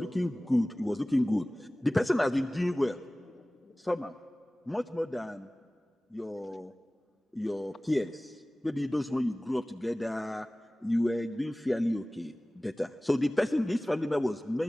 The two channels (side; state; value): both; normal; correlation 0.98